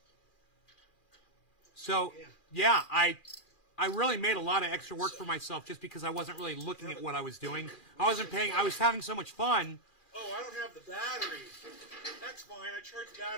So, yeah, I really made a lot of extra work for myself just because I wasn't really looking at what I was doing. I was having so much fun. Oh, I don't have the battery. That's fine. I charged the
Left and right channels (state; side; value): late; right; 2.4 ms